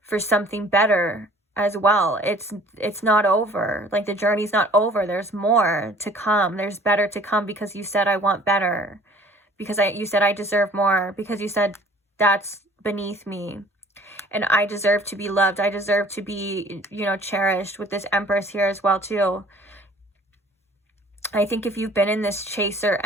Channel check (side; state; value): both; normal; correlation 0.52